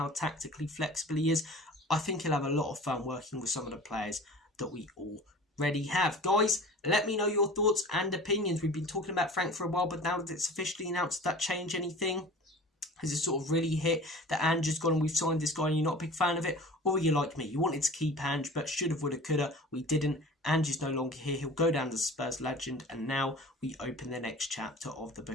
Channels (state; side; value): normal; both; correlation 0.41